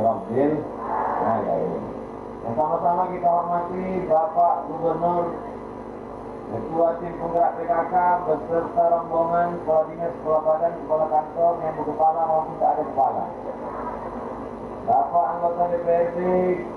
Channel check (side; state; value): both; identical; correlation 1.00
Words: alamin. Yang sama-sama kita hormati Bapak Gubernur, Ketua Tim Penggerak PKK beserta rombongan Kepala Dinas, Kepala Badan, Kepala Kantor yang berkepala maupun tak ada kepala. Bapak anggota DPRD,